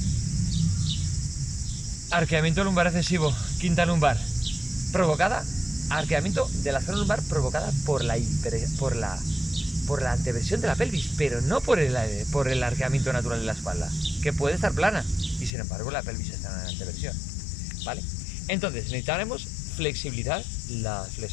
Arqueamiento lumbar excesivo, quinta lumbar, provocada, arqueamiento de la zona lumbar provocada por la anteversión de la pelvis, pero no por el arqueamiento natural de la espalda, que puede estar plana, y sin embargo la pelvis está en anteversión, ¿vale? Entonces necesitaremos flexibilizar la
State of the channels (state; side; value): drops out; right; at 15.5 s